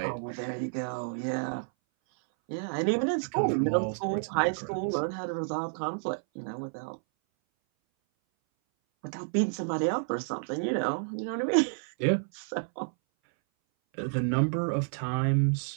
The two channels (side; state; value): left; silent; 58 dB below the other